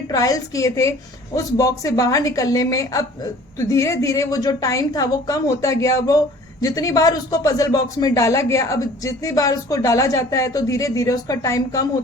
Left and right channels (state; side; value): normal; both; correlation 0.49